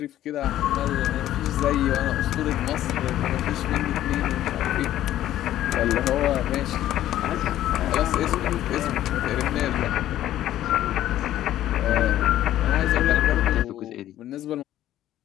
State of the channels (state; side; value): quieter; right; 12.9 dB